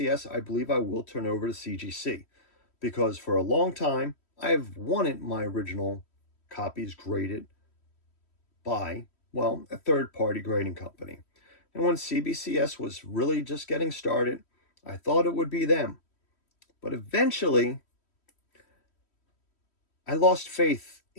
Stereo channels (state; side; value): late; right; 3.1 ms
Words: I believe I will turn over to CGC. Because for a long time, I've wanted my original copies graded by, well, a third-party grading company. And when CBCS was really just getting started, I thought it would be them. But eventually, I lost faith